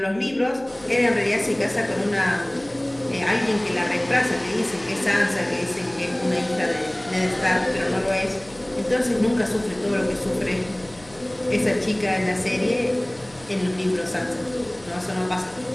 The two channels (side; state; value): left; noise; hum, 24 dB below the sound